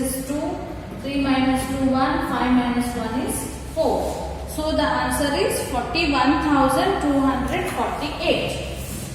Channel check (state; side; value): identical; both; correlation 1.00